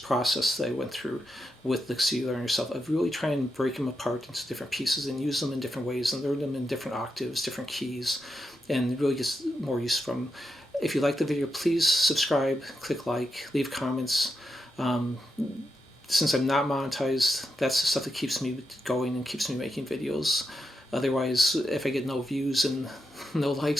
that I went through with licks you learn yourself. I really try and break them apart into different pieces and use them in different ways and learn them in different octaves, different keys, and really get more use from them. If you like the video, please subscribe, click like, leave comments. Since I'm not monetized, that's the stuff that keeps me going and keeps me making videos. Otherwise, if I get no views and no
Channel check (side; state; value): both; normal; correlation 0.86